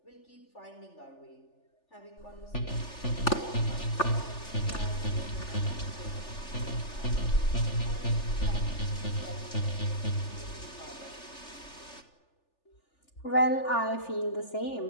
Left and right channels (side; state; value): right; late; 3.4 ms